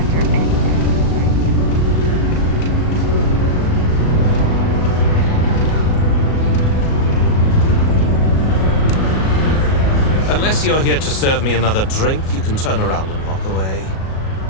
Unless you're here to serve me another drink, you can turn around and walk away.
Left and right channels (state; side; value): late; right; 37 ms